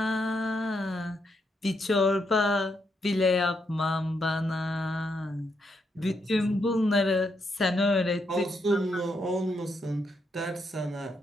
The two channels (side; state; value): both; normal; correlation 0.79